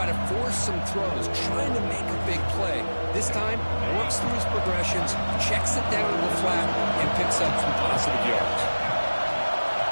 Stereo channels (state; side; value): inverted; both; correlation -1.00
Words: to force some throws, trying to make a big play. This time, works through his progressions, checks it down to the flat, and picks up some positive yards.